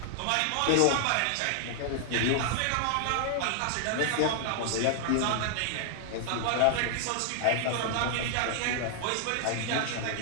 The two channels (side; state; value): both; different; correlation 0.00